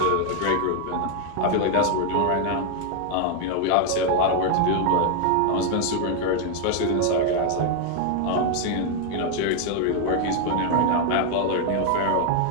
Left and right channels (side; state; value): both; different; correlation 0.00